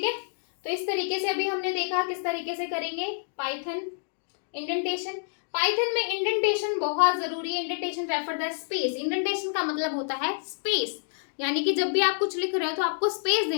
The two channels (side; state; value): right; silent; digital silence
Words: है। तो इस तरीके से अभी हमने देखा किस तरीके से करेंगे पाइथन इंडेंटेशन। पाइथन में इंडेंटेशन बहुत जरूरी है, indentation refer the space, indentation का मतलब होता है स्पेस, यानी कि जब भी आप कुछ लिख रहे हो तो आपको स्पेस